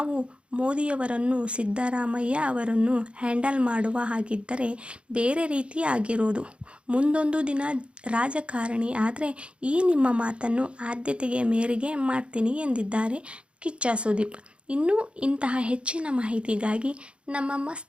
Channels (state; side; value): late; left; 0.058 ms